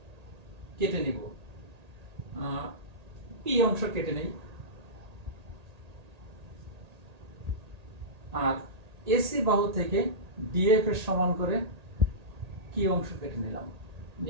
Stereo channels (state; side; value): late; left; 1.8 ms